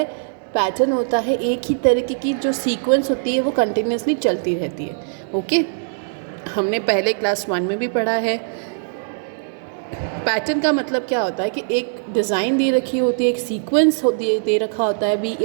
पैटर्न होता है एक ही तरीके की जो सीक्वेंस होती है वो कंटिन्यूसली चलती रहती है, ओके। हमने पहले क्लास 1 में भी पढ़ा है। पैटर्न का मतलब क्या होता है कि एक डिज़ाइन दे रखी होती है, एक सीक्वेंस दे रखा होता है, B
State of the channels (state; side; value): silent; left; digital silence